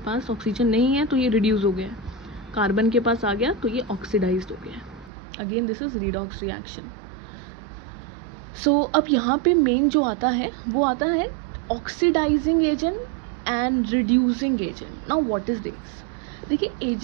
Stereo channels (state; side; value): drops out; left; at 5.1 s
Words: ऑक्सीजन नहीं है तो ये रिड्यूस हो गया है, कार्बन के पास आ गया तो ये ऑक्सीडाइज्ड हो गया है। Again this is redox reaction. So अब यहाँ पे मेन जो आता है वो आता है oxidising agent and reducing agent. Now what is this? देखिए,